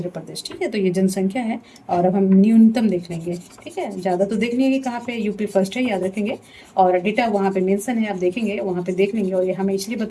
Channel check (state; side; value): identical; both; correlation 1.00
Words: प्रदेश। ठीक है, तो ये जनसंख्या है, और अब हम न्यूनतम देख लेंगे। ठीक है, ज़्यादा तो देख लेंगे कहाँ पे, यूपी फर्स्ट है, याद रखेंगे, और डेटा वहाँ पे मेंशन है, आप देखेंगे वहाँ पे देख लेंगे, और ये हमें इसलिए